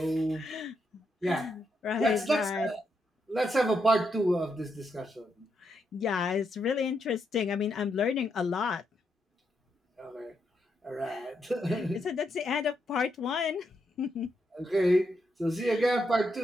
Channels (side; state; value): both; normal; correlation 0.81